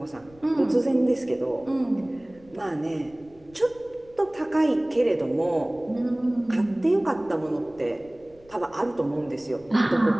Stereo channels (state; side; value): noise; left; rumble, 27 dB below the sound